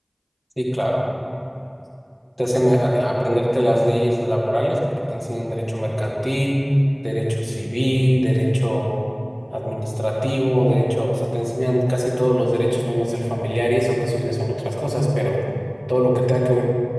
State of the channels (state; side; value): identical; both; correlation 1.00